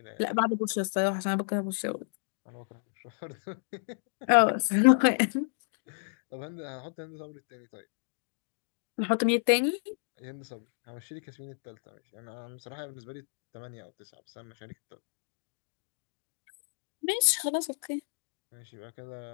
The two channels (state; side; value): silent; right; digital silence